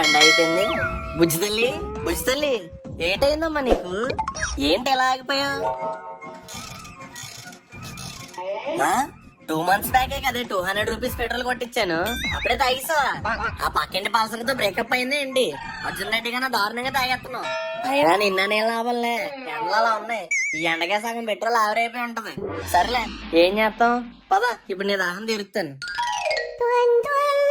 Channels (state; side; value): identical; both; correlation 1.00